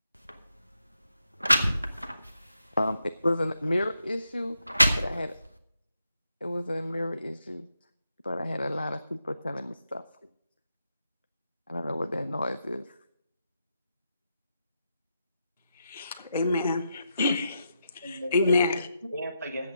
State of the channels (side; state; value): both; inverted; correlation -0.84